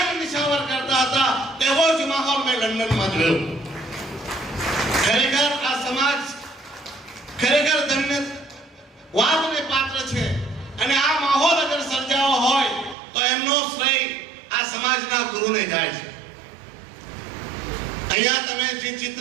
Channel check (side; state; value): left; drops out; at 13.0 s